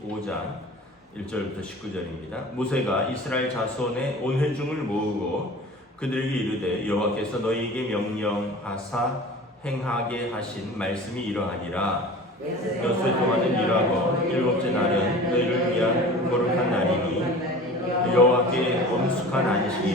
1절부터 19절입니다. 모세가 이스라엘 자손의 온 회중을 모으고 그들에게 이르되 여호와께서 너희에게 명령하사 행하게 하신 말씀이 이러하니라. 여수의 동안은 일하고 일곱째 날은 너희를 위한 거룩한 날이니 여호와께 엄숙한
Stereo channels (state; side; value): normal; both; correlation 0.39